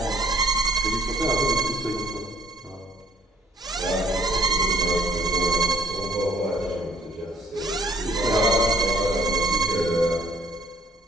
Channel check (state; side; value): normal; both; correlation 0.62